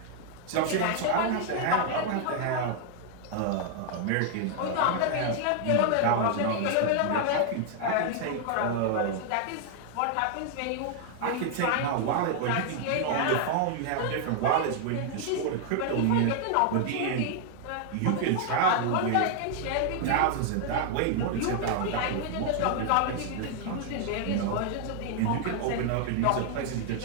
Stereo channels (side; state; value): both; different; correlation 0.00